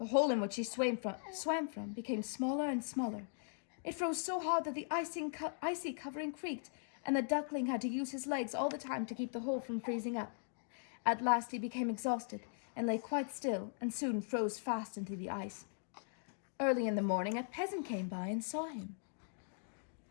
hole in which he swam from became smaller and smaller. It froze so hard that the icy covering creaked, and the duckling had to use his legs all the time to keep the hole from freezing up. At last he became exhausted, and lay quite still, and soon froze fast into the ice. Early in the morning, a peasant came by and saw him.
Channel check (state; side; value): silent; right; digital silence